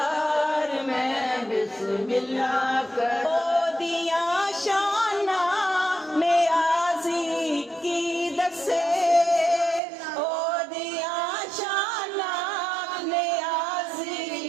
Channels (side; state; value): left; drops out; at 9.8 s